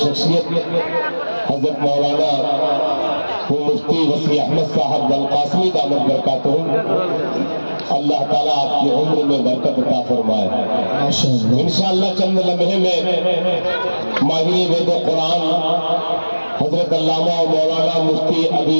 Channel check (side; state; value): both; inverted; correlation -1.00